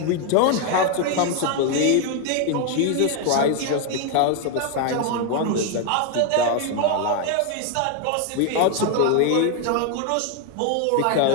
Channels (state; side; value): different; both; correlation 0.01